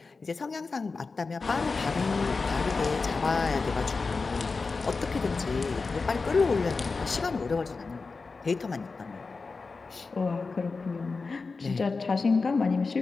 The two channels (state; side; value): quieter; right; 4.2 dB